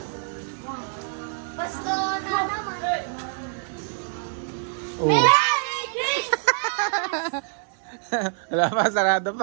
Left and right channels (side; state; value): left; silent; 61 dB below the other